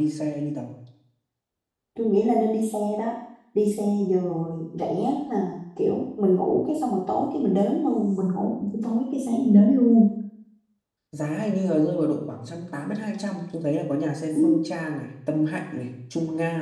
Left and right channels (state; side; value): identical; both; correlation 1.00